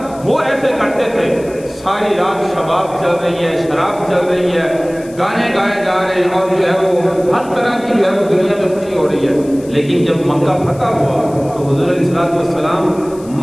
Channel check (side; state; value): left; noise; hiss, 23 dB below the sound